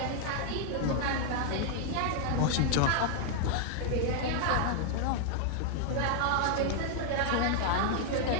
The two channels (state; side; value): different; both; correlation 0.00